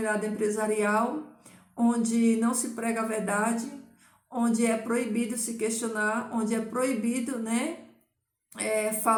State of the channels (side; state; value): both; identical; correlation 1.00